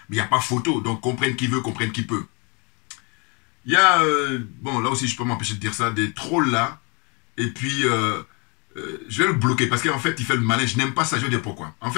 mais il n'y a pas photo, donc comprenne qui veut, comprenne qui peut. Il y a, bon là aussi je peux m'empêcher de dire ça, des trolls là, et puis je vais le bloquer, parce qu'en fait il fait le malin, je n'aime pas ça, je vais dire pourquoi. En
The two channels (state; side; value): quieter; right; 32.0 dB